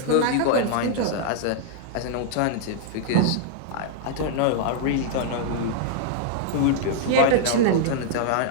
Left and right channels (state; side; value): different; both; correlation -0.01